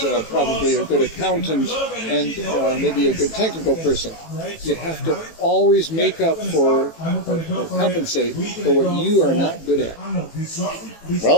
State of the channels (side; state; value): right; late; 18 ms